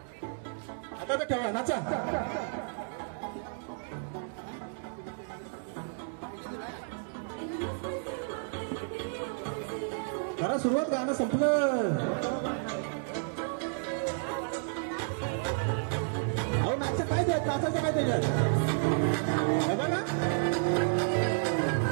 आता तर ठेवा. नाचा. करा सुरुवात. गाणं संपलं. अहो नाचा काय द्यायचं. नाचायचं काय त्याच्यात. बघा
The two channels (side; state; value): left; silent; digital silence